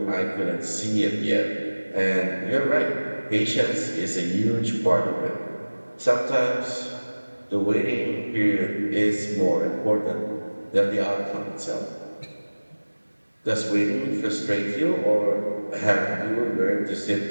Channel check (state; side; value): inverted; both; correlation -1.00